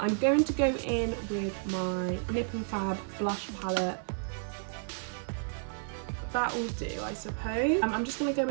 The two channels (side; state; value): left; silent; 57 dB below the other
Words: going to go in with my NIP+FAB blush palette. That will do, I suppose. I'm just going to go